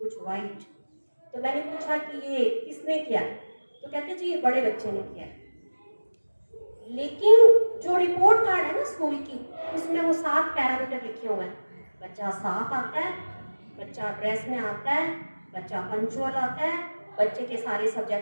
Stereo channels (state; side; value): inverted; both; correlation -1.00